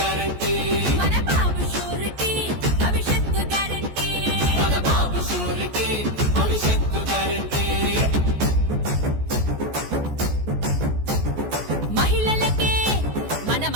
మన బాబు షూరిటీ భవిష్యత్తు గ్యారంటీ మన బాబు షూరిటీ భవిష్యత్తు గ్యారంటీ మహిళలకే మన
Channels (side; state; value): left; late; 14 ms